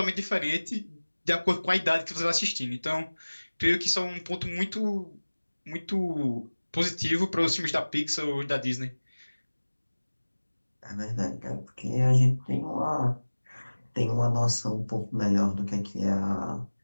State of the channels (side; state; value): both; inverted; correlation -1.00